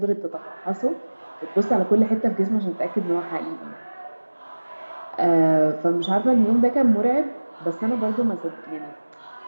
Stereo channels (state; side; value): inverted; both; correlation -1.00